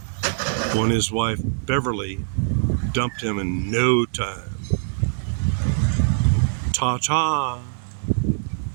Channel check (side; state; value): left; silent; digital silence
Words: when his wife Beverly dumped him in no time. Ta-ta.